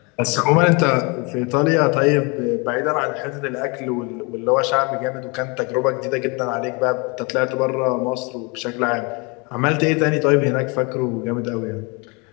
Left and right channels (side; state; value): right; quieter; 30.0 dB